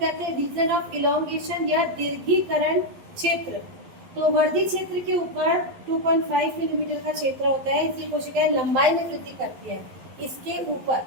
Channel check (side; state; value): left; late; 11 ms